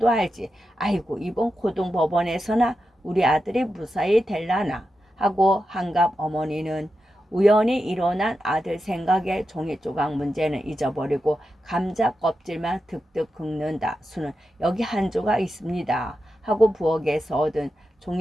알지. 아이고 이번 고등법원에서나 우리 아들이 무사히 될라나 하고 한갑 어머니는 우연히 일어난 아들 생각에 종이 조각 문제는 잊어버리고 감자 껍질만 득득 긁는다. 수는 여기 한 조각 있습니다. 하고 부엌에서 얻은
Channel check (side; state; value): both; normal; correlation 0.89